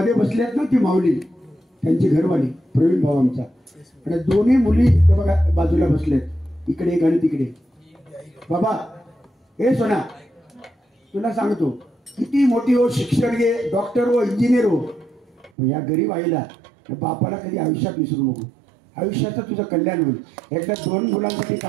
बसल्यात ना, ती माऊली त्यांची घरवाली प्रवीण भाऊ आमचा, आणि दोन्ही मुली बघा बाजूला बसल्यात, इकडे एक आणि तिकडे. बाबा हे सोना, तुला सांगतो किती मोठी हो, शिक्षण घे, डॉक्टर हो, इंजिनियर हो, या गरीब आईला बापाला कधी आयुष्यात विसरू नको. आयुष्याचं तुझं कल्याण होईल. एकदा 2 मुलांसाठी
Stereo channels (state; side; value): drops out; left; at 15.5 s